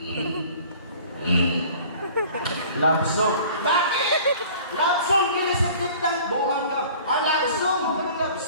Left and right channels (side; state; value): both; inverted; correlation -0.48